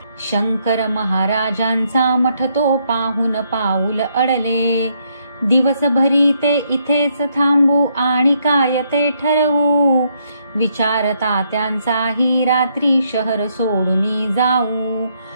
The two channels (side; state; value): both; inverted; correlation -0.74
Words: शंकर महाराजांचा मठ तो पाहून पाऊल अडले. दिवसभरी ते इथेच थांबू आणि काय ते ठरवू, विचार तात्यांचाही रात्री शहर सोडून जाऊ.